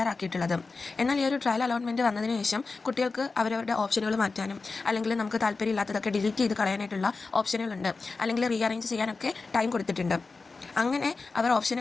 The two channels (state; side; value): quieter; right; 4.0 dB